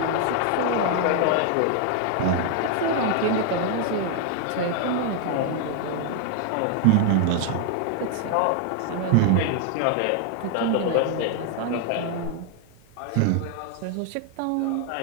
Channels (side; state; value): both; different; correlation 0.00